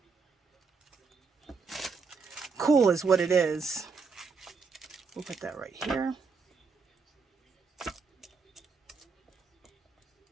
Cool is what it is. We'll put that right here.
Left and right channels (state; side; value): quieter; left; 4.8 dB